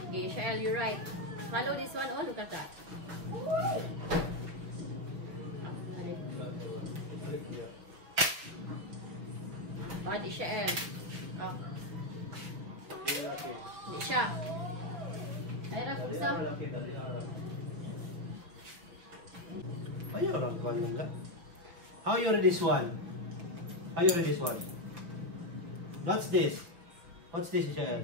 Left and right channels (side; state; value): left; late; 5.9 ms